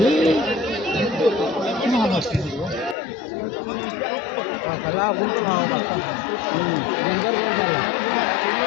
খেলা বলতে খাওয়া ডেঞ্জার বল খেলা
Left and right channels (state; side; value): drops out; right; at 3.0 s